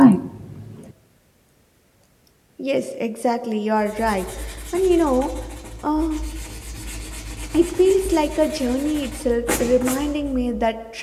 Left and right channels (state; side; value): identical; both; correlation 1.00